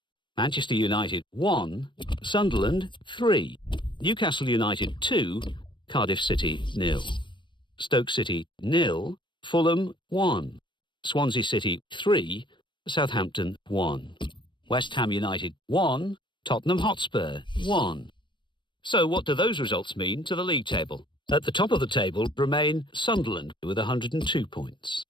Manchester United 1, Sunderland 3. Newcastle United 2, Cardiff City 0. Stoke City 0, Fulham 1. Swansea City 3, Southampton 1. West Ham United 1, Tottenham Hotspur 1. So what do those results mean to the league table? At the top of the table remain Sunderland with 102 points.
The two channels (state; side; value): late; right; 0.23 ms